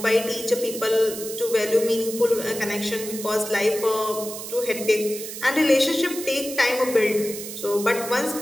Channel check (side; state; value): right; noise; hiss, 9 dB below the sound